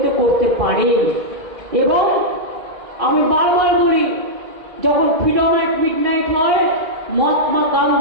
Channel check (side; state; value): left; late; 2.5 ms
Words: করতে পারেন। এবং আমি বারবার বলি, যখন ফ্রিডম অ্যাট মিডনাইট হয়, মহাত্মা